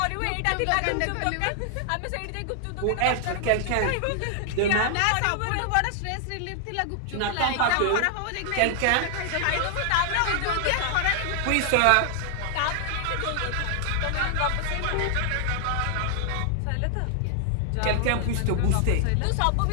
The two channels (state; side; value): different; both; correlation 0.00